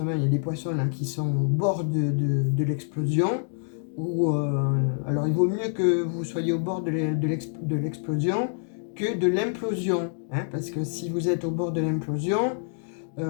il y a des poissons là qui sont au bord de l'explosion. Ou alors il vaut mieux que vous soyez au bord de l'explosion que de l'implosion, hein, parce que si vous êtes au bord de l'implosion,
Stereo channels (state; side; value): silent; right; digital silence